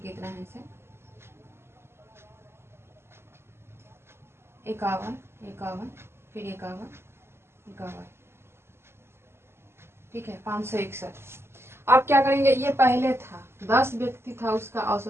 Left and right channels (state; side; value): late; left; 0.12 ms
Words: है इसे। 51 51 फिर 51 51। ठीक है, 561। अब क्या करेंगे, ये पहले था 10 व्यक्ति था, उसका